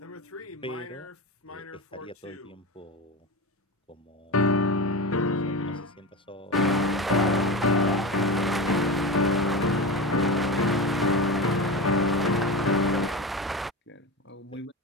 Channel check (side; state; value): both; normal; correlation 0.25